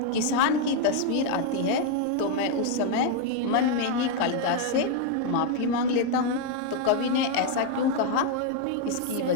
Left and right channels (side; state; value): both; different; correlation 0.00